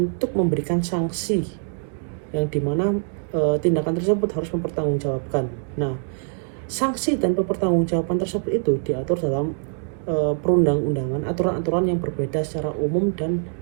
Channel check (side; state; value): left; silent; 60 dB below the other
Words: memberikan sanksi yang dimana tindakan tersebut harus mempertanggungjawabkan. Nah, sanksi dan pertanggungjawaban tersebut itu diatur dalam perundang-undangan, aturan-aturan yang berbeda secara umum dan